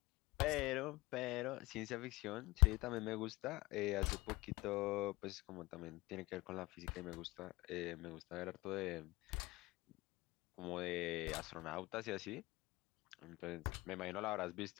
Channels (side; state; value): right; quieter; 21.2 dB